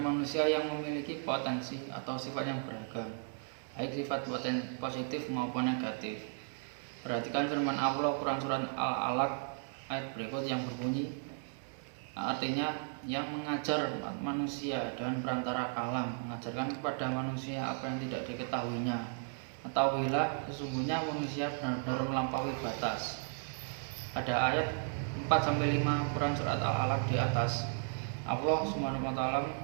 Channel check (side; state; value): left; silent; 54 dB below the other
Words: yang memiliki potensi atau sifat yang beragam, baik sifat positif maupun negatif. Perhatikan firman Allah Quran surat Al-Alaq ayat berikut yang berbunyi, artinya yang mengajar manusia dengan perantara kalam, mengajarkan kepada manusia apa yang tidak diketahuinya. Ketahuilah sesungguhnya manusia benar-benar melampaui batas. Pada ayat 4-5 Quran surat Al-Alaq di atas, Allah SWT